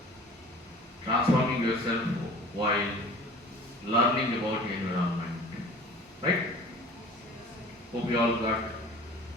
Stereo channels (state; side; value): normal; both; correlation 0.44